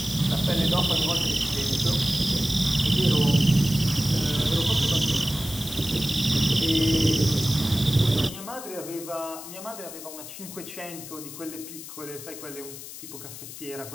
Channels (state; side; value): noise; left; hiss, 12 dB below the sound